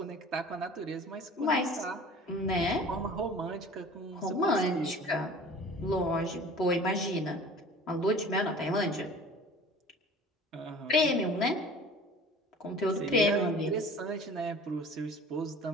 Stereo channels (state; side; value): normal; both; correlation 0.44